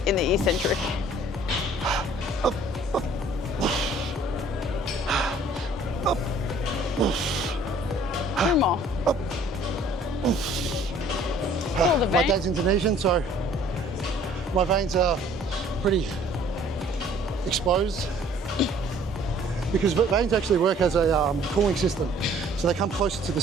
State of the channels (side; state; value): both; normal; correlation 0.56